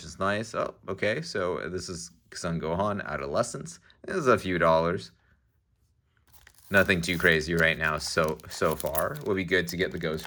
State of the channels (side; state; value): both; identical; correlation 1.00